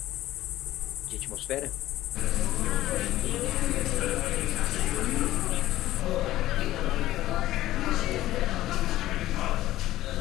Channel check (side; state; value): right; quieter; 15.1 dB